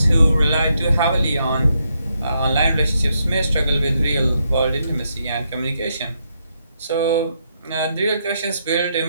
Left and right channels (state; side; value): inverted; both; correlation -0.79